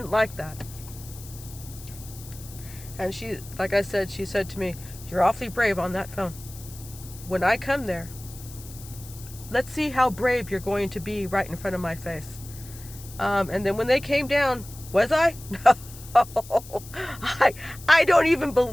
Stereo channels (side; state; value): left; noise; hiss, 17 dB below the sound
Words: like that. And she, like I said, she said to me, "You're awfully brave on that phone. When I come there, let's see how brave you're going to be right in front of my face." And then when they came down, was I? No. I don't even